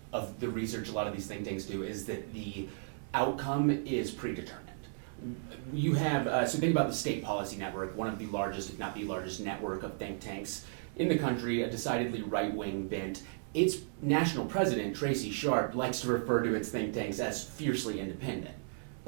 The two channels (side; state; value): left; silent; 55 dB below the other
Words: of the research a lot of these think tanks do is that the outcome is predetermined. You have so think about the State Policy Network, one of the largest, if not the largest, network of think tanks in the country, a decidedly right-wing bent. Its national president, Tracy Sharp, likes to refer to its think tanks as fiercely independent.